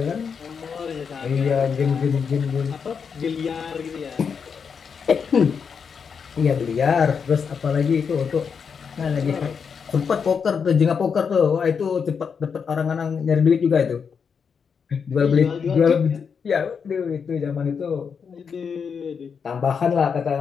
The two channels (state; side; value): quieter; right; 6.3 dB